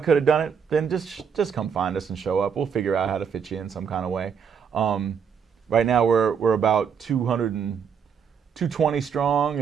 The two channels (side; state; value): left; quieter; 6.9 dB